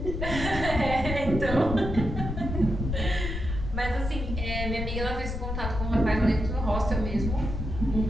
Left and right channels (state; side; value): noise; left; rumble, 4 dB below the sound